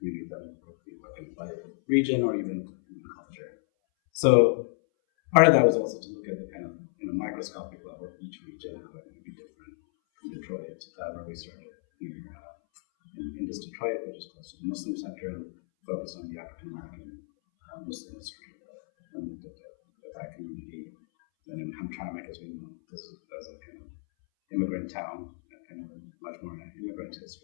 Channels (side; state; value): right; silent; 57 dB below the other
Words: that would be working by region or even culture. So part of that was also to look at the kind of microscopic level of each region, how it might be different. In Detroit, where we started here in this Detroit, which is close to the Muslim center, and focused on the African American Muslim history and looked at that community. Then in Hamtramck, as we know, this is as a kind of immigrant town, kind of much more an immigrant